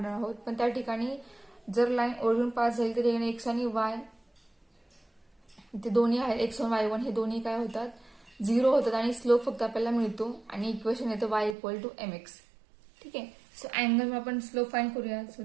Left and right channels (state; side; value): drops out; left; at 11.6 s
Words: आहोत. पण त्या ठिकाणी जर लाईन ओरिजिन पास झाली तर x आणि y ते दोन्ही आहेत, x1 y1 हे दोन्ही काय होतात 0 होतात आणि स्लोप फक्त आपल्याला मिळतो आणि इक्वेशन येतं y इक्वल टू mx. ठीक आहे. सो अँगल आपण स्लोप फाइंड करूया. So